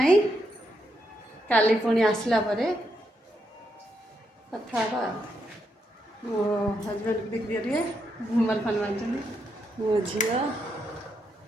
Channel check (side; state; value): both; normal; correlation 0.80